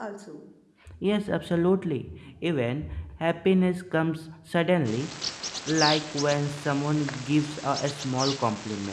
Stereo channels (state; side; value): identical; both; correlation 1.00